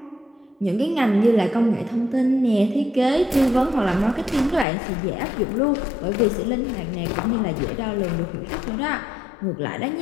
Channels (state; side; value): drops out; right; at 4.7 s